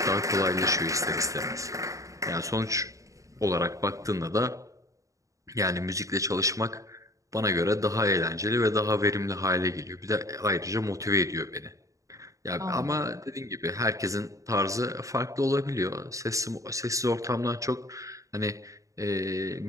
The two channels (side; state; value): left; late; 0.16 ms